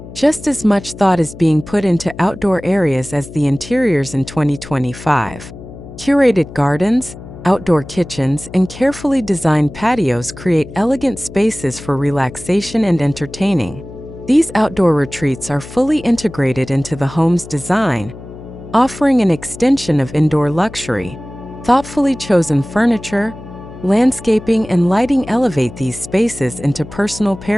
Just as much thought is being put into outdoor areas as the interiors in 2025. Curated gardens, outdoor kitchens, and carefully designed patios create elegant spaces for relaxation and entertaining. These outdoor retreats are fully integrated into the home's design, offering an extension of indoor luxury. Thoughtfully chosen furniture, landscaping, and lighting elevate these spaces into personal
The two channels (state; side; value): noise; left; hum, 15 dB below the sound